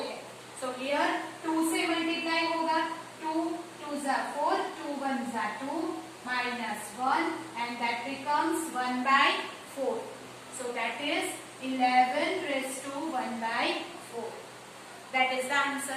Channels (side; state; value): both; identical; correlation 1.00